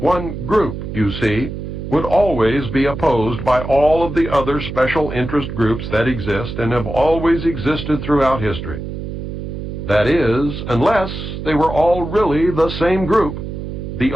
One group, you see, would always be opposed by all of the other special interest groups that exist and have always existed throughout history. That is, unless they were all really the same group, the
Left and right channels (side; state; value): right; noise; hum, 7 dB below the sound